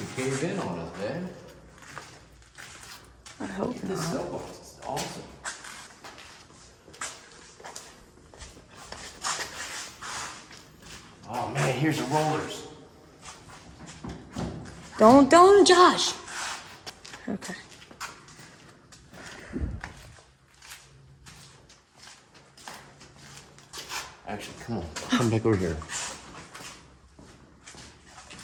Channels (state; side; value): identical; both; correlation 1.00